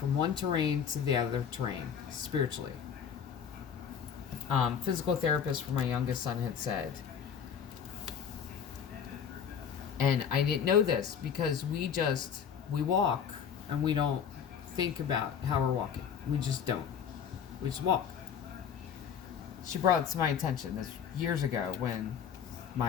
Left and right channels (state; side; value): quieter; right; 7.6 dB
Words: one terrain to the other terrain, spiritually. Physical therapist for my youngest son had said, and I didn't know this because we walk and we don't think about how we're walking. We just don't. We just walk. She brought it to my attention this years ago when